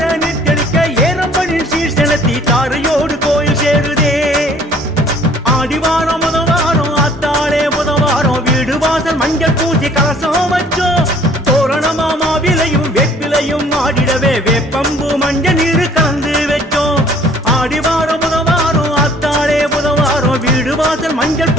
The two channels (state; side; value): normal; both; correlation 0.56